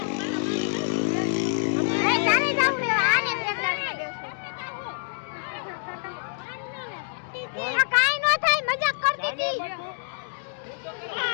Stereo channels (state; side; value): silent; right; digital silence